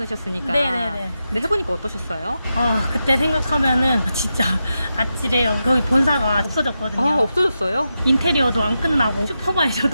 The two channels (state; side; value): inverted; both; correlation -0.88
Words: 네네네. 근데 해보니까 어떠셨어요? 그때 생각하면은 진짜 아찔해요. 거기 본사가 없어졌거든요. 없어졌어요? 인테리어도 안 끝나고